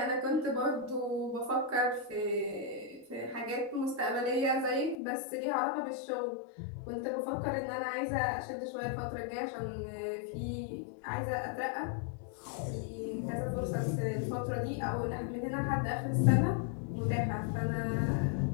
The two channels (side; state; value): right; drops out; at 5.0 s